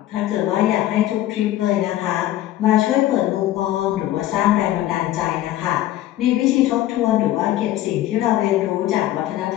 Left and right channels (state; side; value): quieter; right; 13.9 dB